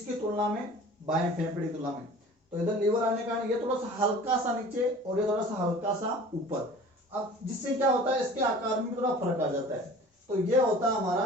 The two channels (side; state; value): both; normal; correlation 0.44